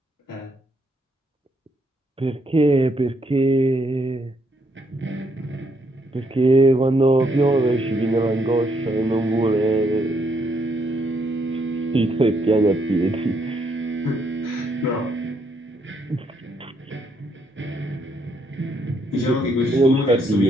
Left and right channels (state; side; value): normal; both; correlation 0.73